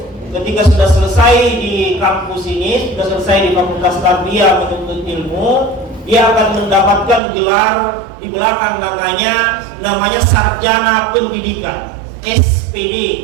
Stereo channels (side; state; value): left; drops out; at 7.2 s